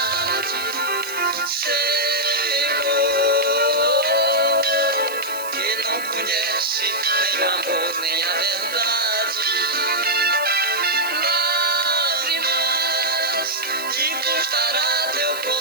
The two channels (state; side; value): noise; right; hiss, 13 dB below the sound